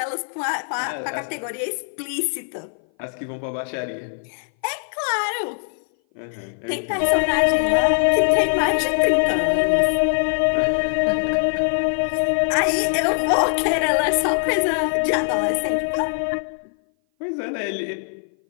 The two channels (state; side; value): silent; right; 58 dB below the other